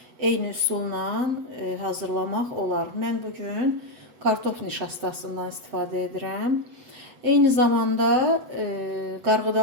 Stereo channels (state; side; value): late; left; 8.1 ms